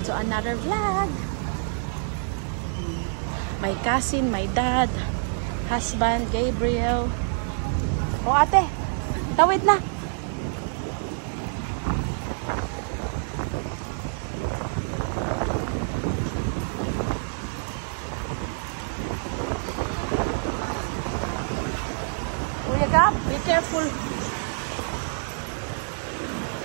to another vlog. My cousin, my dad, husband, Gabriel. Oh ate, tawid na. Kuya Gab, be careful.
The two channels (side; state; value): left; silent; digital silence